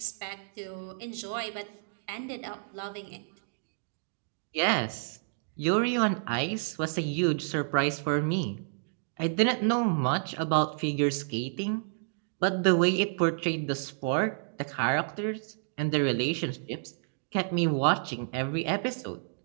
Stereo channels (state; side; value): silent; left; digital silence